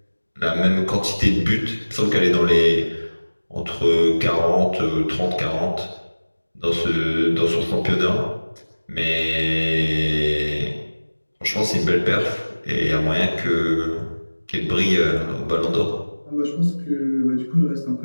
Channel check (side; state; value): both; inverted; correlation -1.00